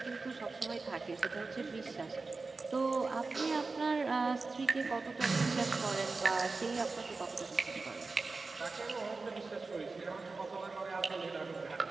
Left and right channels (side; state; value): left; quieter; 3.9 dB